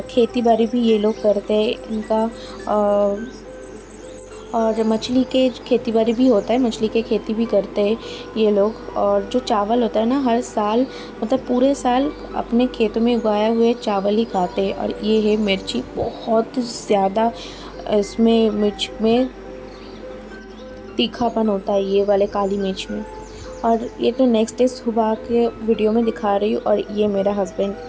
खेती बाड़ी भी ये लोग करते हैं। इनका और मछली के खेती बाड़ी भी होता है, मछली के खेती भी करते हैं ये लोग। और जो चावल होता है ना, हर साल, मतलब पूरे साल अपने खेतों में उगाए हुए चावल ही खाते हैं। और ये है मिर्ची, बहुत ज़्यादा इसमें मिर्च में तीखापन होता है, ये वाले काली मिर्च में। और ये तो नेक्स्ट डे सुबह के वीडियो में दिखा रही हूँ। और ये मेरा हस्बैंड,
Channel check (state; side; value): identical; both; correlation 1.00